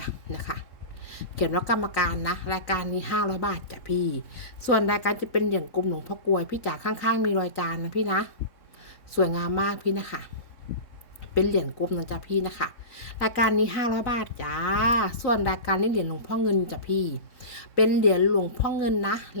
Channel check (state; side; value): late; right; 3.6 ms